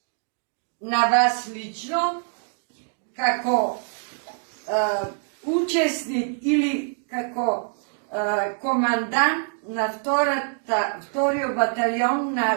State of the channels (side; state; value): left; silent; 57 dB below the other